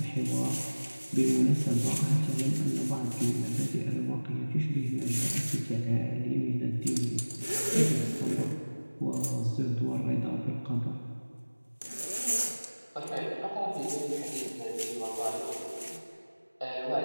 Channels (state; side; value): inverted; both; correlation -1.00